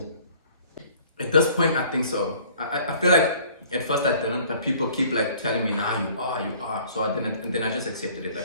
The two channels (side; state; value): both; inverted; correlation -0.54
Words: At this point, I think so. I feel like at first I didn't, but people keep like telling me, nah, you are. So I didn't, and then I just accepted it.